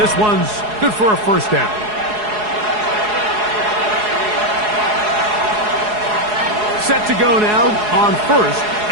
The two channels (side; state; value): left; late; 4.8 ms